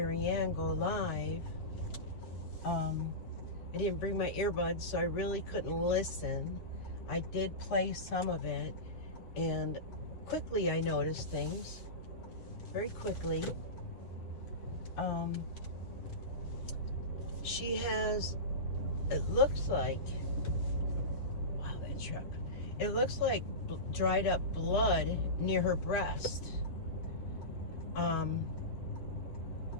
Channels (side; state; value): right; late; 8.9 ms